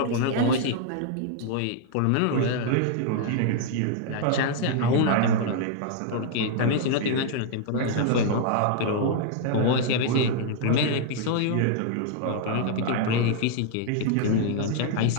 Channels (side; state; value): both; different; correlation 0.00